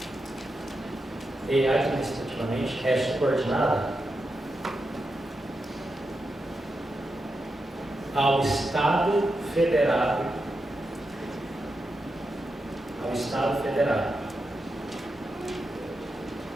ao Estado Federado,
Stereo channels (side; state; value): both; normal; correlation 0.87